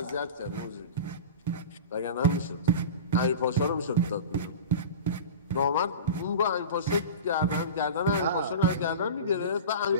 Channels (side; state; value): both; inverted; correlation -0.31